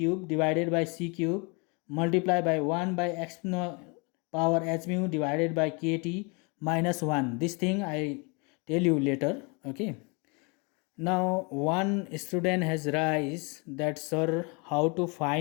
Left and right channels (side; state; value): right; quieter; 31.3 dB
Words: divided by c cube multiplied by 1 by exponential power h mu divided by kt minus 1. This thing I tell you later. Okay, now one student has raised that, sir, how to